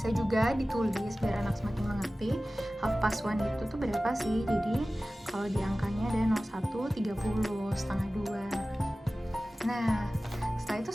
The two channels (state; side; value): normal; both; correlation 0.96